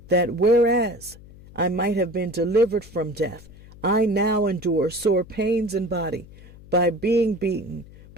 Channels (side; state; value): left; noise; hum, 20 dB below the sound